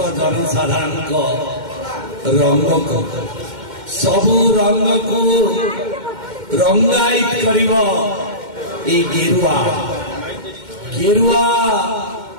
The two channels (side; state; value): left; late; 2.1 ms